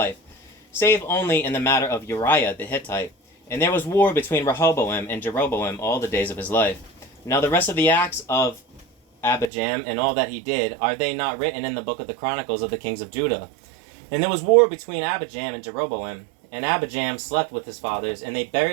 save only in the matter of Uriah the Hittite. And there was war between Rehoboam and Jeroboam all the days of his life. Now the rest of the acts of Abijam and all that he did, are they not written in the book of the Chronicles of the kings of Judah? And there was war between Abijam and Jeroboam, and Abijam slept with his fathers, and they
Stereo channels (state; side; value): drops out; left; at 9.5 s